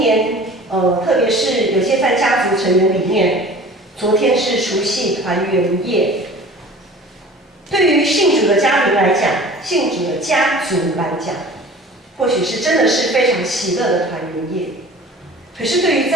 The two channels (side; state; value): both; normal; correlation 0.43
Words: 特别是有些在家族成员里面，昨天是除夕团圆夜。对于信主的家庭来讲，信主的家族来讲，或许是真的是非常喜乐的团圆夜。可是对于